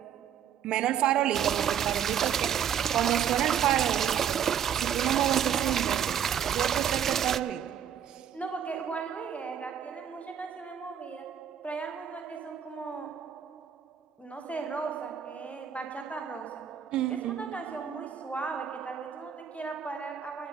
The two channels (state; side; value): quieter; left; 9.0 dB